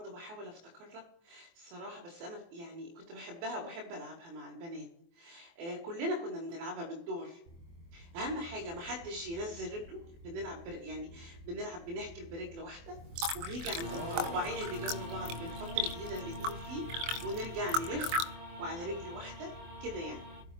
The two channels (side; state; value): left; late; 24 ms